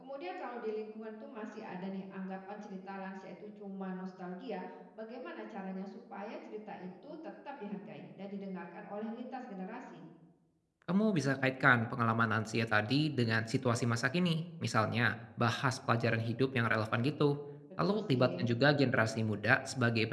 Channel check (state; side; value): identical; both; correlation 1.00